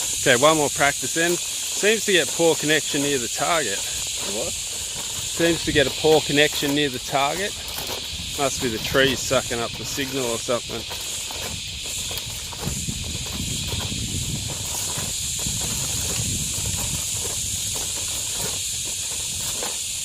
Okay, one more practice then. Seems to get poor connection near the target. What? Seems to get a poor connection near the target. Must be the trees sucking up the signal or something.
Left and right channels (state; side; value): identical; both; correlation 1.00